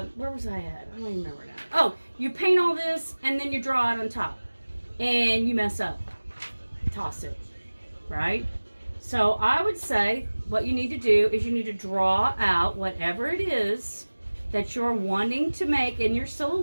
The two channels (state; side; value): inverted; both; correlation -1.00